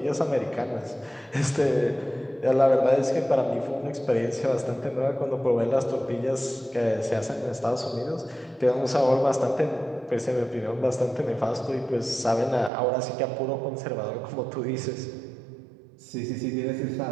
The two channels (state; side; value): drops out; left; at 12.7 s